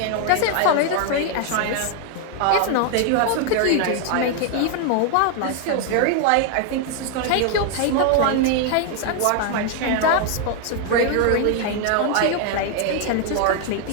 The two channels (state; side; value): different; both; correlation 0.00